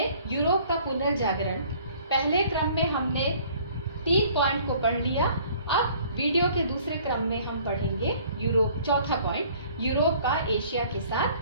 यूरोप का पुनर्जागरण। पहले क्रम में हमने 3 पॉइंट को पढ़ लिया। अब वीडियो के दूसरे क्रम में हम पढ़ेंगे यूरोप, चौथा पॉइंट, यूरोप का एशिया के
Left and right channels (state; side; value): inverted; both; correlation -0.54